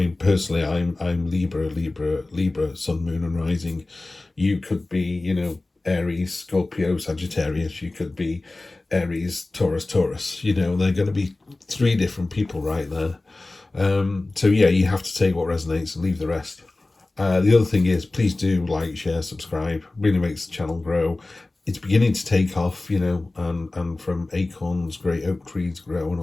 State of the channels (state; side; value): quieter; right; 3.0 dB